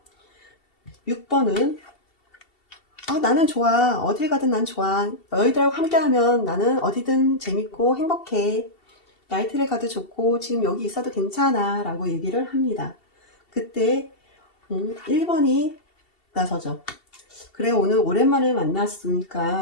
6번은 나는 좋아. 어딜 가든 난 좋아. 너희들하고 함께하면 나는 어디든 재밌고 행복해. 나이트를 가도 좋고 지금 여기 있어도 괜찮아 라고 얘기를 합니다. 그때 1번이 나서죠. 그래 오늘 오랜만에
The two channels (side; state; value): right; late; 2.7 ms